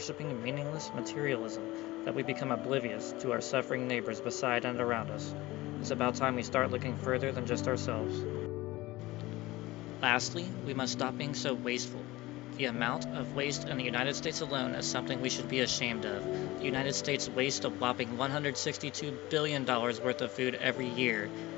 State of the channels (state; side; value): quieter; right; 19.2 dB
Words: meaningless materialism that we become oblivious to our suffering neighbors beside and around us. It's about time we start looking further than just ourselves. Lastly, we must stop being so wasteful. The amount of waste in the United States alone is something we should be ashamed of. The United States wastes a whopping $162 billion worth of food every year.